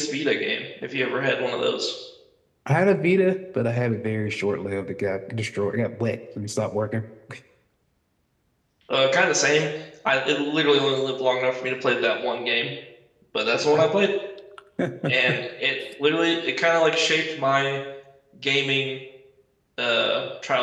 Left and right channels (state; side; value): identical; both; correlation 1.00